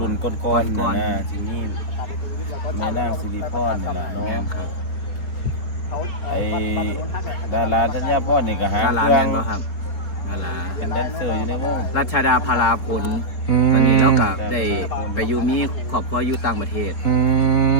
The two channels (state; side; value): late; right; 3.8 ms